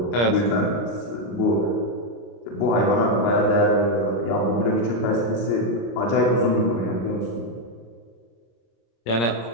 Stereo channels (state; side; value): late; right; 26 ms